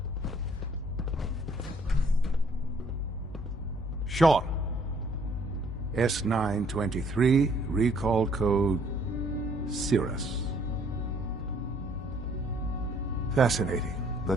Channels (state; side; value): normal; both; correlation 0.62